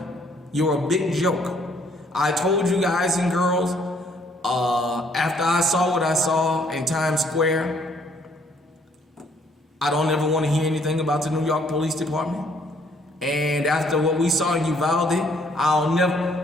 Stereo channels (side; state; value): both; normal; correlation 0.64